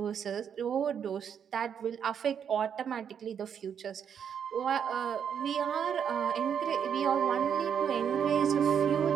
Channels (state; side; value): quieter; left; 7.9 dB